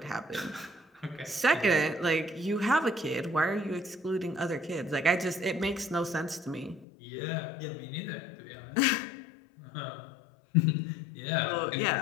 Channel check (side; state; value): right; drops out; at 6.9 s